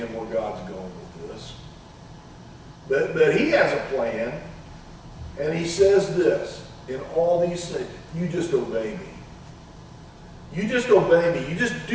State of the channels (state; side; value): identical; both; correlation 1.00